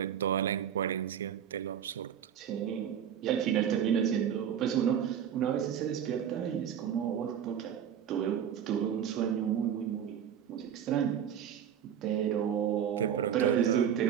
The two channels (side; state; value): left; quieter; 9.0 dB